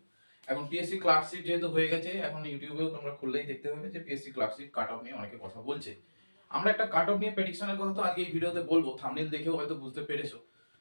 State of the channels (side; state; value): both; inverted; correlation -1.00